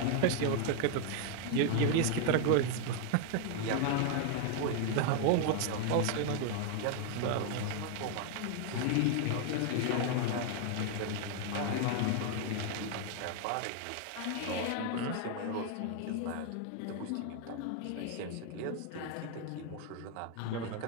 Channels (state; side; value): different; both; correlation 0.00